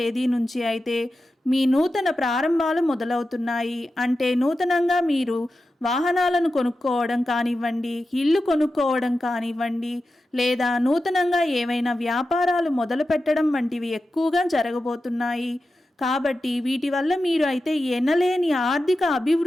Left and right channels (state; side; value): normal; both; correlation 0.92